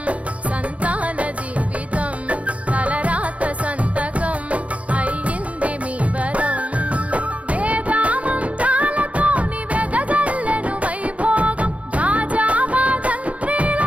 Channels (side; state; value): left; late; 0.065 ms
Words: సంతాన జీవితం తలరాత సంతకం అయ్యింది మీ వరం వేదామంత్రాలతోని వెదజల్లెను వైభోగం భాజావాదంత్రీలతో